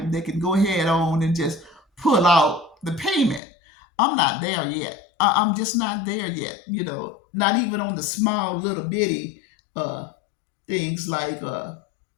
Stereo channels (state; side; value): drops out; right; at 3.4 s